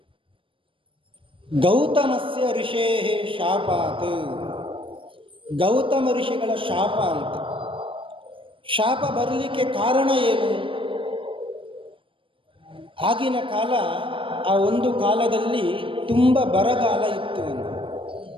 ಗೌತಮಸ್ಯ ಋಷೇ ಶಾಪಾತ್. ಗೌತಮ ಋಷಿಗಳ ಶಾಪ ಅಂತ. ಶಾಪ ಬರಲಿಕ್ಕೆ ಕಾರಣ ಏನು? ಆಗಿನ ಕಾಲ, ಆ ಒಂದು ಕಾಲದಲ್ಲಿ ತುಂಬ ಬರಗಾಲ ಇತ್ತು.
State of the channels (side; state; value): left; late; 0.25 ms